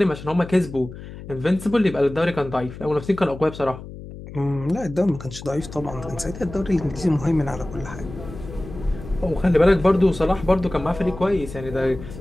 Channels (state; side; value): noise; left; hum, 13 dB below the sound